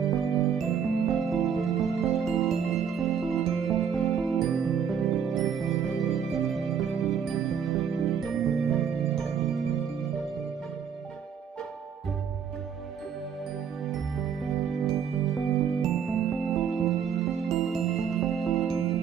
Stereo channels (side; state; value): left; quieter; 7.6 dB